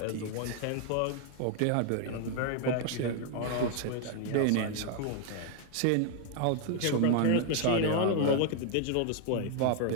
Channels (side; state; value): both; different; correlation 0.00